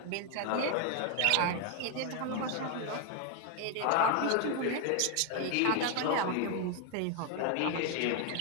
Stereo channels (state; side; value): different; both; correlation 0.01